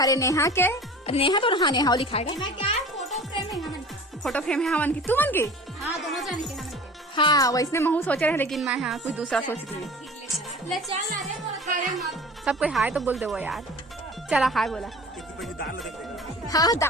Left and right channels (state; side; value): normal; both; correlation 0.41